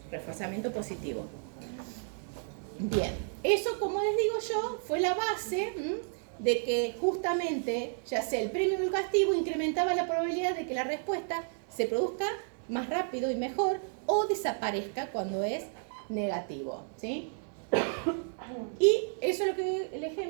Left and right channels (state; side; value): silent; left; 56 dB below the other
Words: Reforzamiento positivo. Bien, eso, como les digo yo, fue la base de que justamente, ya sea el premio o el castigo, incrementaba la probabilidad de que la respuesta se produzca más rápido y mejor o desaparezca cuando es negativo. ¿Sí? Y eso es lo que el